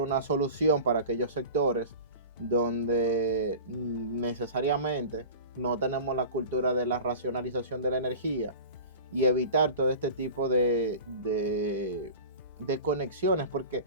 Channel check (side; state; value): both; inverted; correlation -0.36